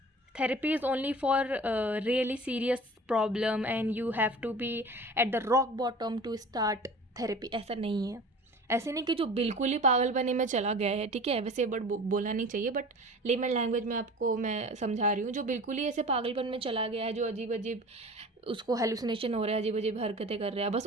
therapy is only for really serious problem and you have to be at the rock bottom to start therapy, ऐसा नहीं है। ऐसे नहीं कि जो बिल्कुल ही पागलपने में चला गया है, ठीक है, वैसे बट बोला नहीं चाहिए, बट लेमन लैंग्वेज में आपको मैं समझा रही हूँ, जो बिल्कुल ही ऐसे पागलपन में चला गया है, जो अजीब अजीब उसको हेलुसिनेशन हो रहा है, अजीब अजीब हरकतें कर रहा है, बस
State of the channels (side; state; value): both; normal; correlation 0.41